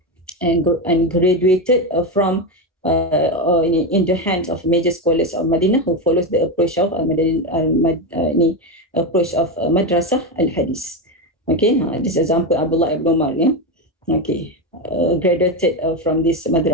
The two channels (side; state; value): both; normal; correlation 0.13